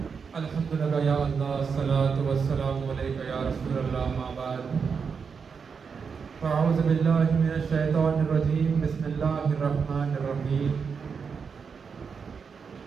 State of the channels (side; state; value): left; quieter; 5.9 dB